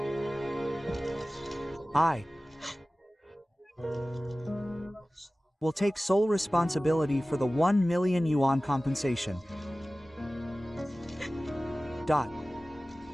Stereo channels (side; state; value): both; normal; correlation 0.97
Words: I will take sole responsibility for the 1 million yuan compensation. Dot.